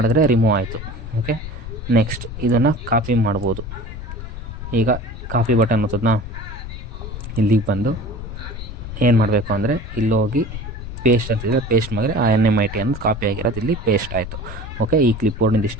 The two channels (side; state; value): left; noise; rumble, 9 dB below the sound